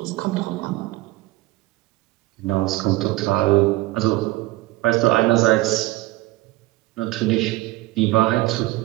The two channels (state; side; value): quieter; left; 18.8 dB